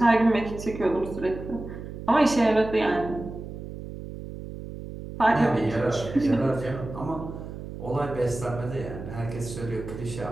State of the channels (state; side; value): noise; right; hum, 10 dB below the sound